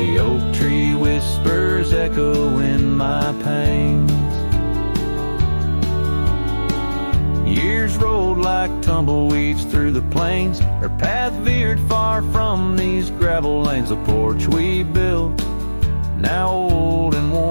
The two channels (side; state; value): both; inverted; correlation -1.00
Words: oak tree whispers echo in my pains. Years rolled like tumbleweeds through the plains. Her path veered far from these gravel lanes. The porch we built, now old and